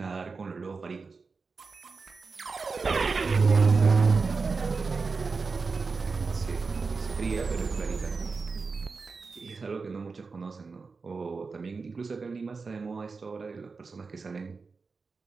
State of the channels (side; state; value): left; quieter; 4.5 dB